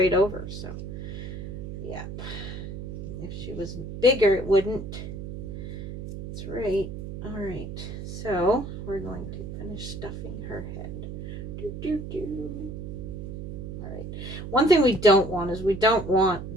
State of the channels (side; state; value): right; noise; hum, 8 dB below the sound